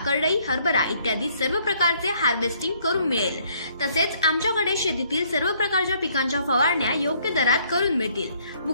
करडई, हरभरा इत्यादी सर्व प्रकारचे हार्वेस्टिंग करून मिळेल। तसेच आमच्याकडे शेतीतील सर्व प्रकारच्या पिकांच्या फवारण्या योग्य दरात करून मिळतील।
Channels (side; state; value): both; inverted; correlation -0.64